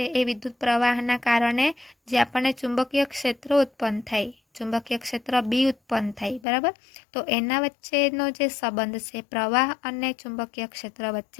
એ વિદ્યુત પ્રવાહના કારણે જે આપણને ચુંબકીય ક્ષેત્ર ઉત્પન્ન થાય, ચુંબકીય ક્ષેત્ર બી ઉત્પન્ન થાય, બરાબર। તો એના વચ્ચેનો જે સંબંધ છે પ્રવાહ અને ચુંબકીય ક્ષેત્ર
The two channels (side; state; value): right; drops out; at 6.5 s